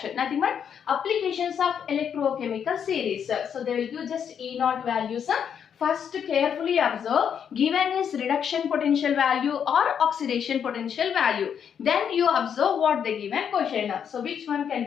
Nothing but applications of electrochemical series. So they will give just E naught values. First carefully observe given is reduction potential value or oxidation potential value. Then you observe what the given question. So which one can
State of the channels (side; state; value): right; quieter; 8.0 dB